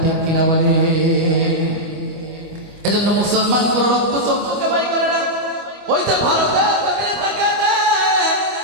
ঠিক কিনা বলে? এজন্য মুসলমান কোন রক্ত চক্ষুকে ভয় করে না। ওই যে ভারতের জমিনে থাকে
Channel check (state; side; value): late; left; 25 ms